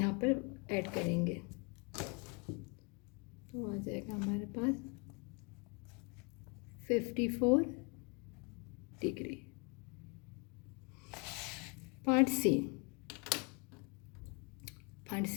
पर ऐड करेंगे तो आ जाएगा हमारे पास 54 डिग्री। पार्ट सी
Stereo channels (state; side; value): quieter; right; 33.3 dB